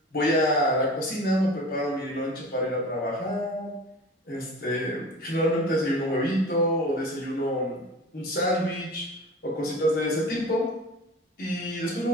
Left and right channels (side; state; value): both; normal; correlation 0.38